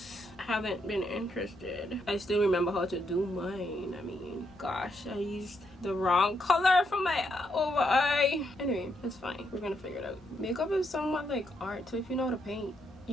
haven't been interested. I still remember how to do mine. I mean, gosh, I used the wrong color for my over eye. Anyway, it's fine. We're gonna figure it out. Makeup is somewhat like art, so if you know how to paint,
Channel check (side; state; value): both; normal; correlation 0.78